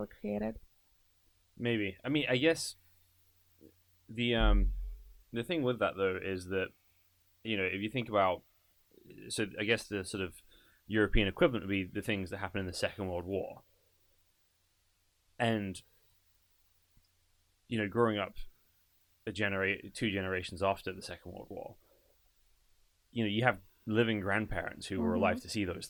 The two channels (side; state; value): both; identical; correlation 1.00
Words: created. Maybe. I mean, I guess the thing with that though is that if you think about, so I guess the sort of European equivalent would be the things that happened in the Second World War. And growing up two generations after the Second World War, you have living grandparents who were alive to see those